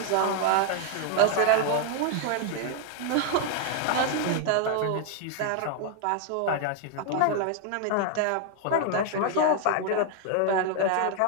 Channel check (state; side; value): different; both; correlation 0.00